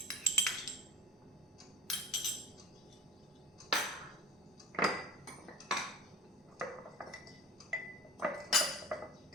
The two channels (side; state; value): both; normal; correlation 0.36